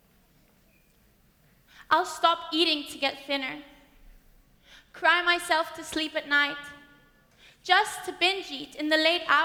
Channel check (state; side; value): identical; both; correlation 1.00